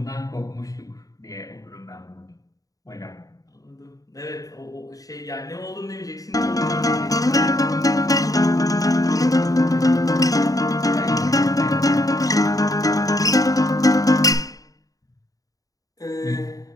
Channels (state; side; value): late; right; 0.17 ms